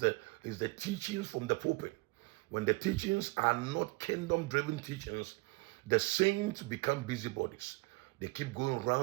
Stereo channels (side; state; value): left; quieter; 24.9 dB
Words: teachings from the pulpit. When the teachings are not kingdom-driven teachings, the saints become busybodies. They keep going